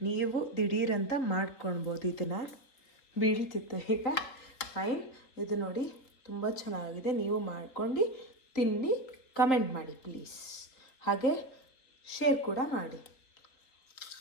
ನೀವು ದಿಢೀರಂತ ಮಾಡ್ಕೊಳ್ಬೋದು ಇದನ್ನು, ಬೀಳ್ತಿತ್ತು ಈಗ. ಫೈನ್, ಇದು ನೋಡಿ ತುಂಬ ಚೆನ್ನಾಗಿದೆ. ನೀವು ಮಾಡ್ಕೊಂಡು ತಿನ್ನಿ, ಕಮೆಂಟ್ ಮಾಡಿ ಪ್ಲೀಸ್. ಹಾಗೆ ಶೇರ್ ಕೂಡ ಮಾಡಿ.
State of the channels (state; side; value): late; right; 3.7 ms